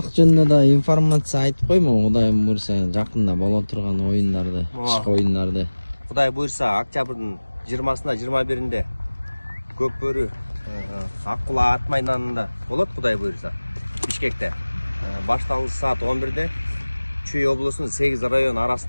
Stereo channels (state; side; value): inverted; both; correlation -1.00